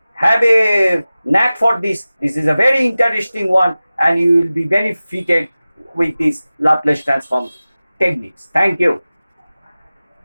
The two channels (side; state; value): both; inverted; correlation -0.97